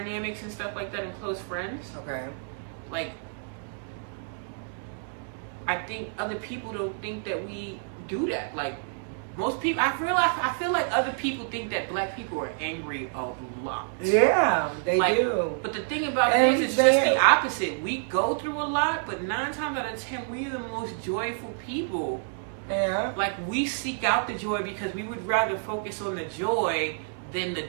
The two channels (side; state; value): left; silent; digital silence